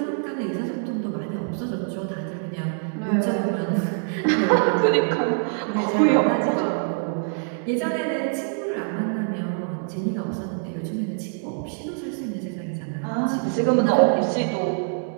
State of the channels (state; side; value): silent; left; 62 dB below the other